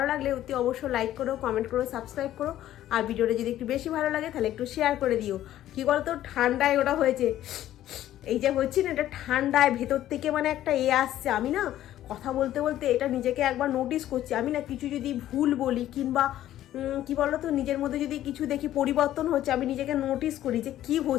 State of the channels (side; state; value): right; quieter; 12.9 dB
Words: লাগলে অতি অবশ্যই লাইক করো, কমেন্ট করো, সাবস্ক্রাইব করো। আর ভিডিওটা যদি একটু বেশি ভালো লাগে তাহলে একটু শেয়ার করে দিও। কি বলতো, ঠান্ডায় ওটা হয়েছে, এই যে হচ্ছে না, এটা ঠান্ডায় ভেতর থেকে মানে একটা আসছে। আমি না কথা বলতে বলতে এটা নিজেকে একবার নোটিস করছি। আমি না কিছু যদি ভুল বলি কিংবা কি বলতো, নিজের মধ্যে যদি কিছু দেখি পরিবর্তন হচ্ছে, আমি নিজেকে নোটিস করি যে কি